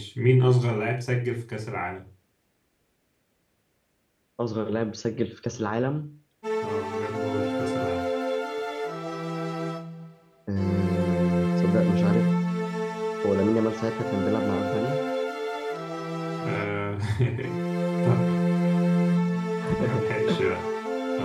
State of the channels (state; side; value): identical; both; correlation 1.00